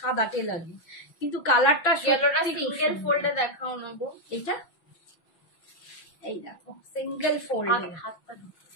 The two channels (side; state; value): right; late; 6.1 ms